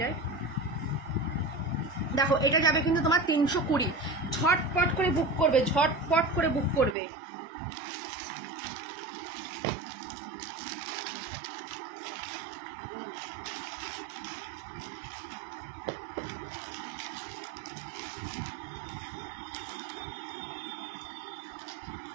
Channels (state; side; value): drops out; left; at 7.0 s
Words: দেখো এটা যাবে কিন্তু তোমার 320, ঝটপট করে বুক করবে, ঝটপট করে বুক করবে।